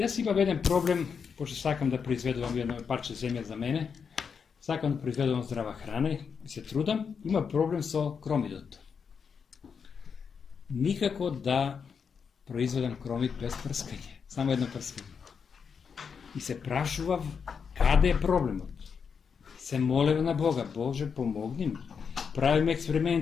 имам еден проблем, пошто сакам да произведувам едно парче земја за мене, сакам да произведувам здрава храна и се трудам, има проблем со кромидот. Никако да произведам кромид без прскање, само едно прскање. И се прашував каде е проблемот. Се молев на Бога, Боже, помогни ми. Правим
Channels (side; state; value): right; quieter; 6.3 dB